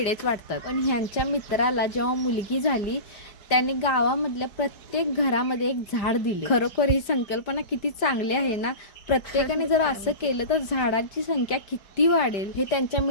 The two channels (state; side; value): late; right; 4.7 ms